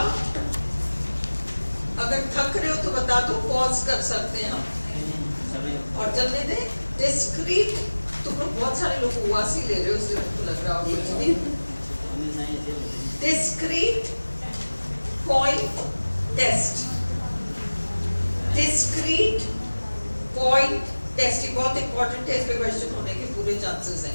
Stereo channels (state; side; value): inverted; both; correlation -1.00